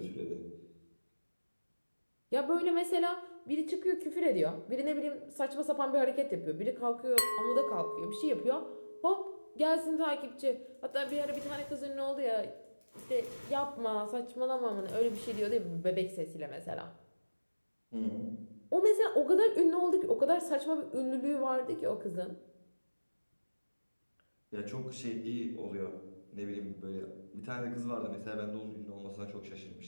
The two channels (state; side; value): inverted; both; correlation -1.00